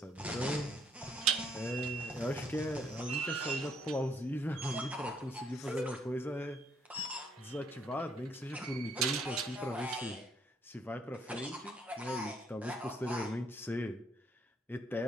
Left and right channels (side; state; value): both; normal; correlation 0.68